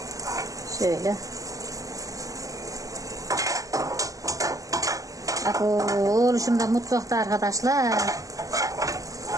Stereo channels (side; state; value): left; late; 0.17 ms